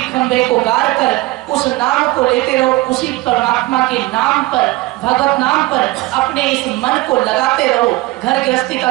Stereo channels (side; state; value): left; quieter; 19.8 dB